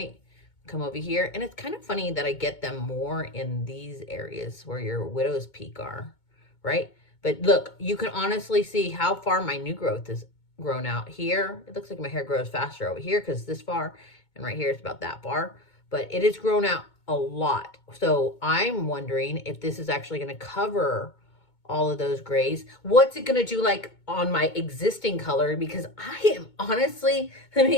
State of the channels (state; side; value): late; right; 2.2 ms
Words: Come over here. And it's kind of funny that I get them more in these areas where your widow's peak are, right? But look, you can honestly see how far my new growth is grown out. Here it looks like my hair grows faster over here because this far, and right here it's about that far, but it has grown out a lot. So I'm wondering if this is actually going to cover all of those grays. What's it going to do like on my existing color? Because I am honestly, let